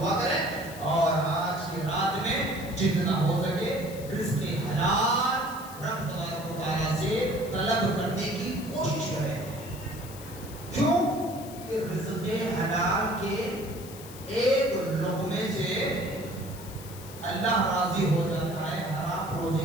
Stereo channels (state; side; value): noise; left; hiss, 16 dB below the sound